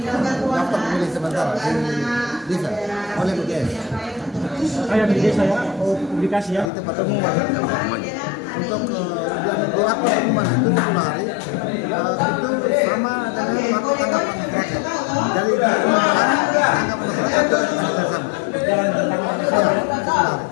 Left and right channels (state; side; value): drops out; right; at 6.7 s